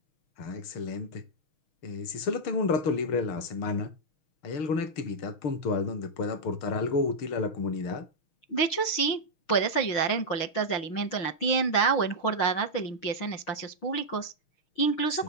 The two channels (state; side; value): late; right; 6.4 ms